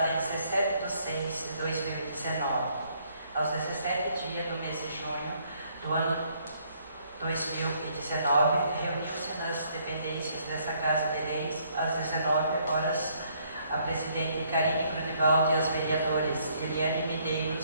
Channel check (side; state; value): both; inverted; correlation -0.67